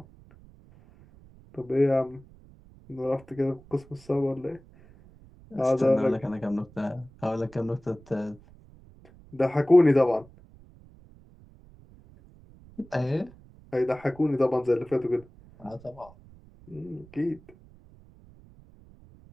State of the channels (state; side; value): noise; right; rumble, 24 dB below the sound